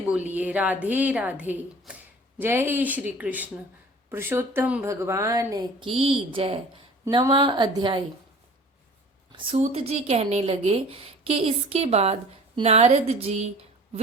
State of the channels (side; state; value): both; normal; correlation 0.45